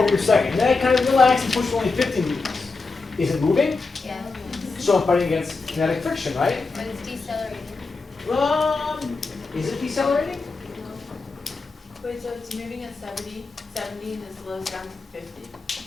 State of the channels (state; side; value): quieter; right; 4.0 dB